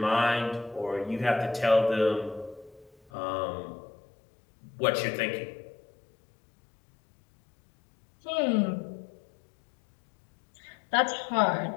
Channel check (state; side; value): drops out; right; at 3.1 s